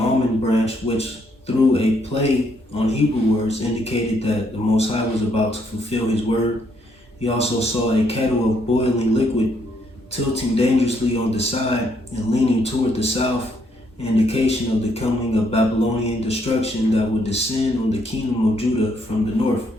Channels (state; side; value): normal; both; correlation 0.72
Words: branch, which through a play on Hebrew words indicated that the Most High was about to fulfill His word. He also saw a kettle of boiling liquid, tilting dangerously on the side and leaning toward the south, an indication of the coming of Babylonian destruction that would descend on the kingdom of Judah from the north.